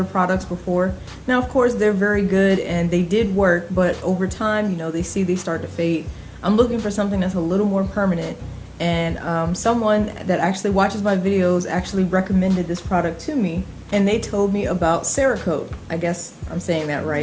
products before. Now, of course, they're very good and they did work, but over time, you know, they start to fade. I'm looking for something that's a little more permanent, and someone that actually watches my videos actually recommended this product to me, and they told me about Cerakote. I guess I'm saying that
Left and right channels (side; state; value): both; identical; correlation 1.00